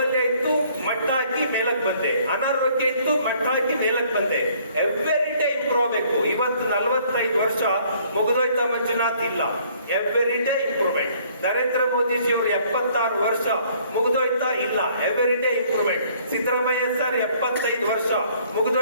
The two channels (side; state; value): both; inverted; correlation -0.60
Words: ಇತ್ತು, ಮಟ್ಟ ಹಾಕಿ ಮೇಲಕ್ಕೆ ಬಂದೆ. ಅನಾರೋಗ್ಯ ಇತ್ತು, ಮಟ್ಟ ಹಾಕಿ ಮೇಲಕ್ಕೆ ಬಂದೆ. ಎವ್ರಿ ಡೇ ಇಂಪ್ರೂವ್ ಆಗಬೇಕು. ಇವತ್ತು 45 ವರ್ಷ ಮುಗಿದೋಯ್ತಾ ಮಂಜುನಾಥ್? ಇಲ್ಲ, every day improvement. Narendra Modiji ಅವರು 76 ವರ್ಷ ಮುಗಿದೋಯ್ತಾ? ಇಲ್ಲ, every day improvement. Siddaramaiah sir 75 ವರ್ಷ